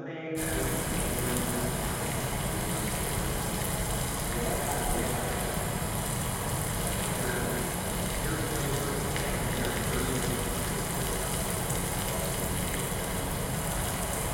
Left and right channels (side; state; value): both; identical; correlation 1.00